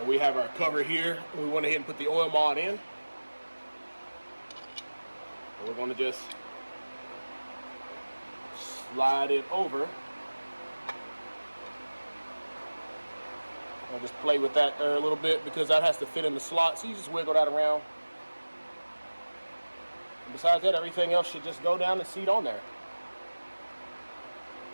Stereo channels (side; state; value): both; inverted; correlation -1.00